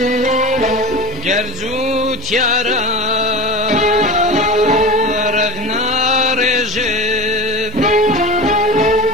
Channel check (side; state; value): both; normal; correlation 0.30